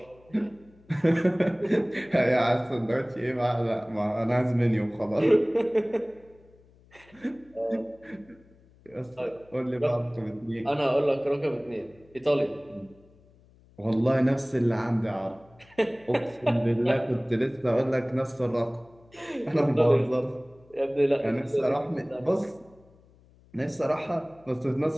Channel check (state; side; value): noise; left; hum, 28 dB below the sound